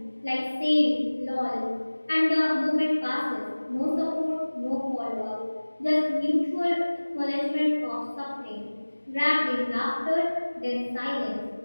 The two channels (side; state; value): both; inverted; correlation -1.00